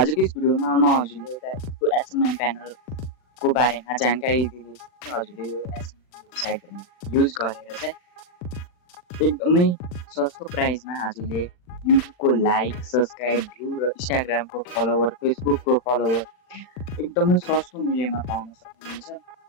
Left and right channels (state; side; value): late; right; 39 ms